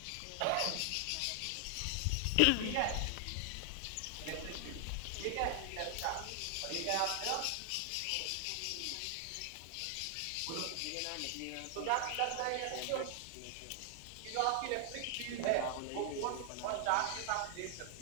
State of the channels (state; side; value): different; both; correlation 0.00